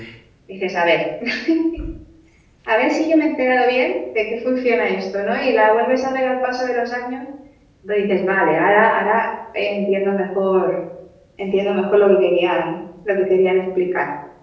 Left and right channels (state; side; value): identical; both; correlation 1.00